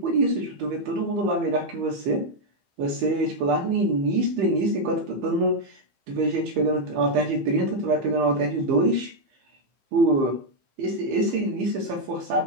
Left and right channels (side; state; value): left; late; 15 ms